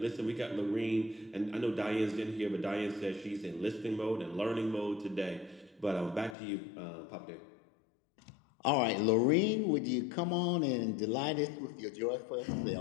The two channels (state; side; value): drops out; right; at 6.4 s